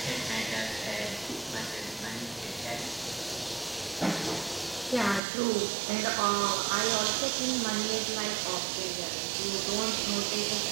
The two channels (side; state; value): left; drops out; at 5.2 s